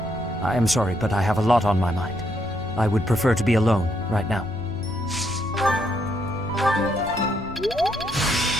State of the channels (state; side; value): noise; left; rumble, 15 dB below the sound